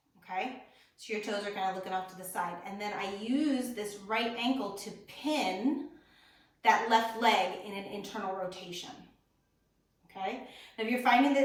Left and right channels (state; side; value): identical; both; correlation 1.00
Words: okay? So your toes are kind of looking off to the side. And then I use this right ankle to pin that left leg in an internal rotation, okay? Now if you're finding that